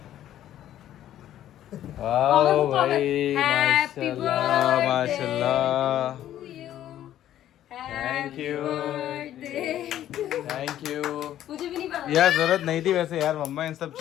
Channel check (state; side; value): quieter; right; 12.0 dB